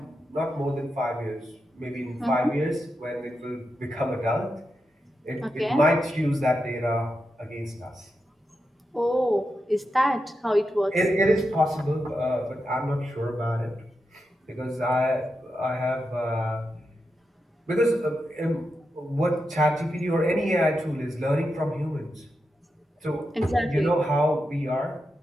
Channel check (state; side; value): normal; both; correlation 0.87